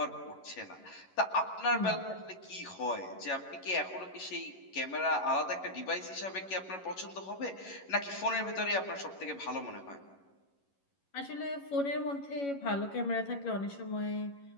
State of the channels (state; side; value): late; right; 11 ms